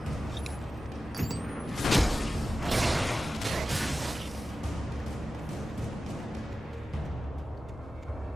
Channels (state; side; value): normal; both; correlation 0.94